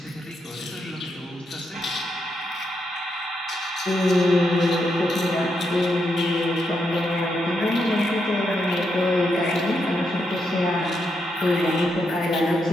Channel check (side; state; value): both; normal; correlation 0.81